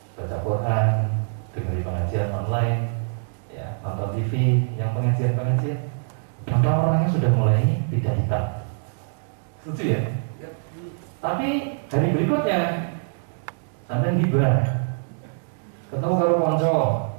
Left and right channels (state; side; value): silent; left; digital silence